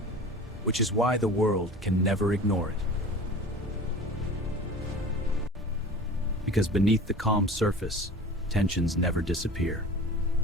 Which is why the world can never ignore it. Because beneath the calm surface, tensions never disappear.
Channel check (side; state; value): both; normal; correlation 0.38